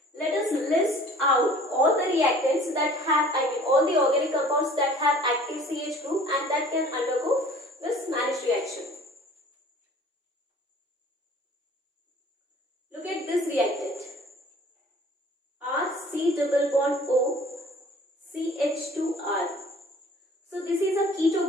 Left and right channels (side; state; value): both; normal; correlation 0.49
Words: let us list out all the reactants that have, all the organic compounds that have active CH group and that can undergo this Manish reaction. Look at this reactant. RC double bond O CH2R. So this is a keto